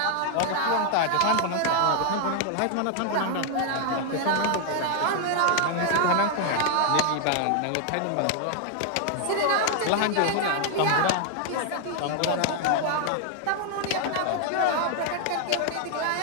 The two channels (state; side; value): different; both; correlation 0.00